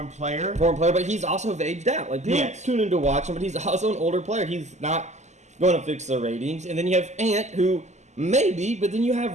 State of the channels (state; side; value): late; left; 0.33 ms